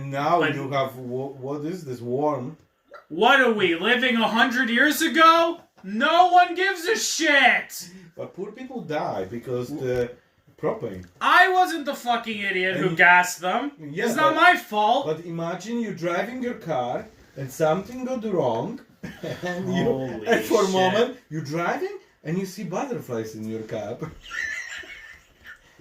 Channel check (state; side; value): identical; both; correlation 1.00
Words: now But- you have what is this worm? What are we, living 100 years ago? No one gives a shit! But poor people die because the propane. I wasn't the fucking idiot who And- gassed them. Yeah, It's not but- my fault. But imagine you driving your car and something goes wrong, and Holy and for a shit. moment you're driving and you see butterflies in your cab,